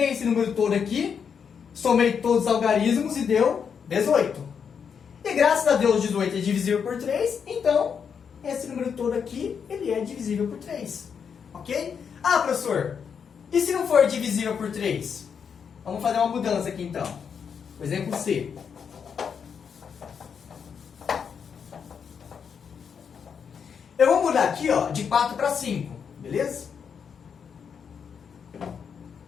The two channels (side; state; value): right; quieter; 6.8 dB